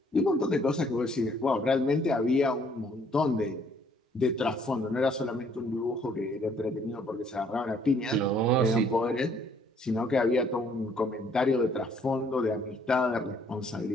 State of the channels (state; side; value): normal; both; correlation 0.63